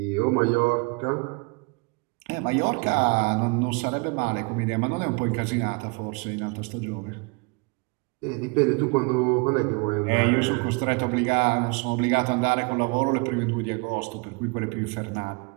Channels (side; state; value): left; quieter; 31.2 dB